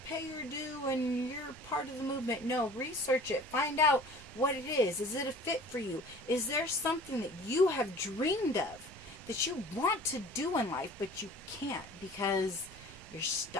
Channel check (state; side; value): normal; both; correlation 0.45